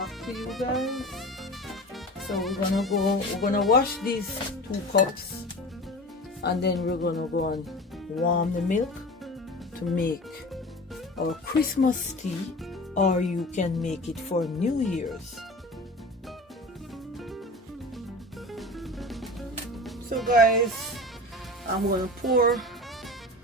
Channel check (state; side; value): normal; both; correlation 0.34